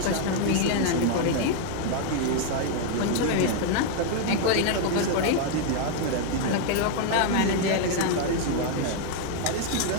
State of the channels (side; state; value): both; different; correlation 0.00